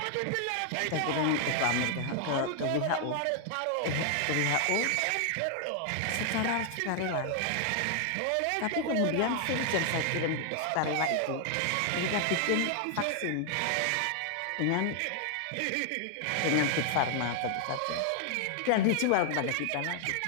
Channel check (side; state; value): both; different; correlation 0.00